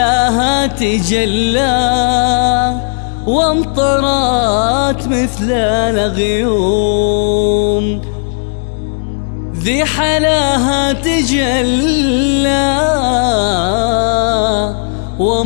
تجلى وامطرت مثل الغيوم، ذي حلاها تجلى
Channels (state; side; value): silent; right; digital silence